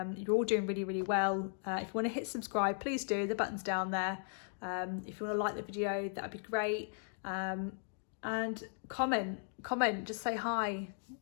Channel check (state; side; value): silent; right; digital silence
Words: all doing really, really well. If you want to hit subscribe, please do. The button's down there. If you want to like the video, that'd be great. And comment, just say hi,